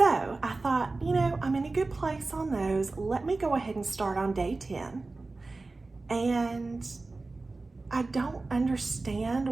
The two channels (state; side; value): quieter; left; 3.5 dB